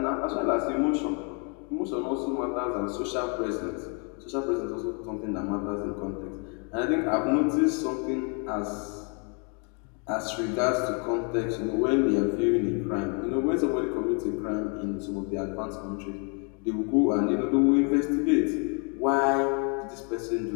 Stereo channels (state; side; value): quieter; right; 37.1 dB